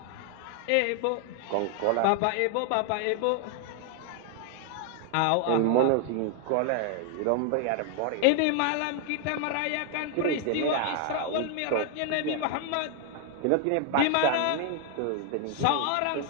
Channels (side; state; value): both; different; correlation 0.00